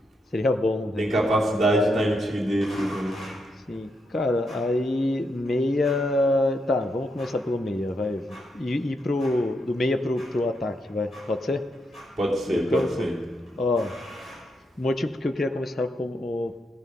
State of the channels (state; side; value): normal; both; correlation 0.81